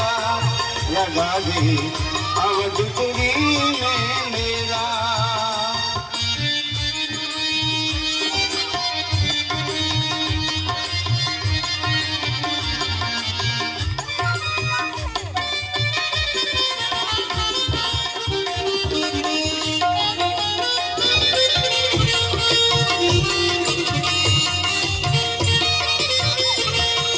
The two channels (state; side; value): identical; both; correlation 1.00